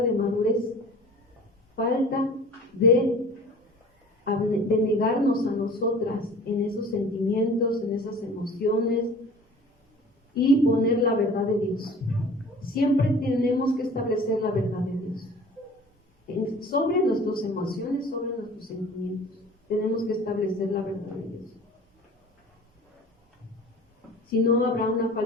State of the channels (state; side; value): normal; both; correlation 0.44